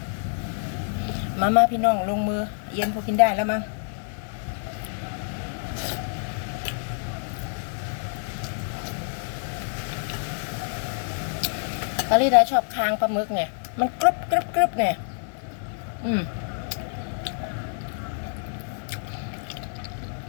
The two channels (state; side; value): silent; right; digital silence